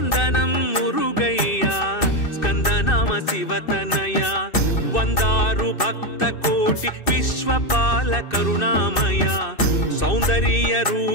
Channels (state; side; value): late; right; 2.6 ms